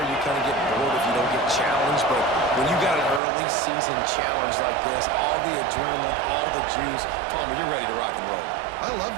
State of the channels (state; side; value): drops out; left; at 3.2 s